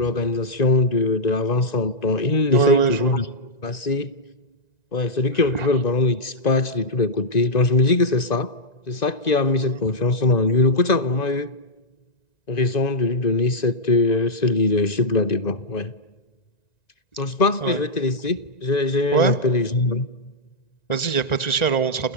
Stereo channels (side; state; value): right; late; 1.9 ms